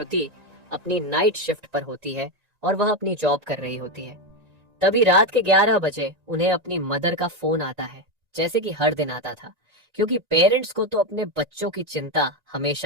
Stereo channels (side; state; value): left; late; 1.9 ms